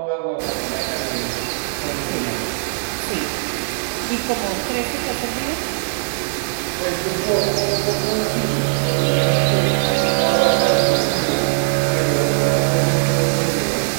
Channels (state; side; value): silent; left; digital silence